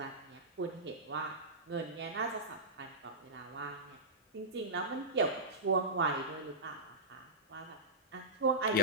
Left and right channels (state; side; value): normal; both; correlation -0.15